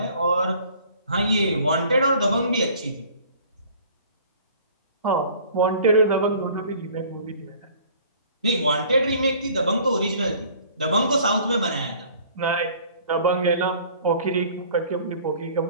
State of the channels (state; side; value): inverted; both; correlation -0.51